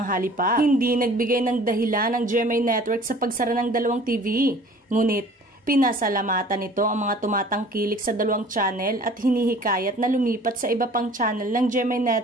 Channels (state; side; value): normal; both; correlation 0.49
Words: Lollipop. Hindi nagbigay ng dahilan ng GMA Network sa pagsara ng dalawang TV, ngunit pinasalamatan nito ang mga tumatangkilik sa dalawang channel at hinihikayat na lumipat sa iba pang channel ng GMA